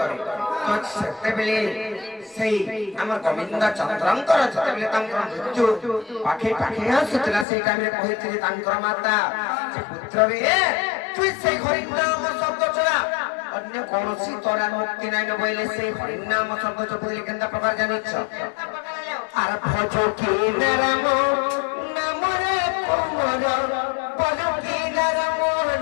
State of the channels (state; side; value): drops out; right; at 7.5 s